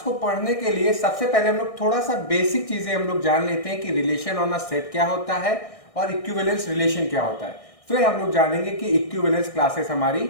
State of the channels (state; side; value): late; right; 1.6 ms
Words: को पढ़ने के लिए सबसे पहले हम लोग थोड़ा सा बेसिक चीजें हम लोग जान लेते हैं कि रिलेशन ऑन अ सेट क्या होता है और इक्विवेलेंस रिलेशन क्या होता है। फिर हम लोग जानेंगे कि इक्विवेलेंस क्लासेस हमारी